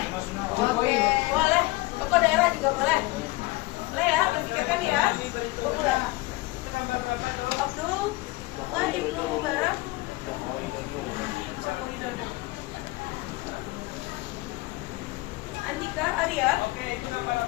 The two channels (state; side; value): quieter; right; 21.3 dB